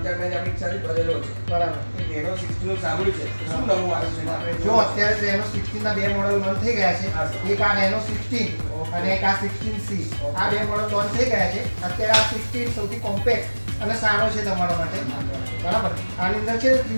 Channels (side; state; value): both; inverted; correlation -1.00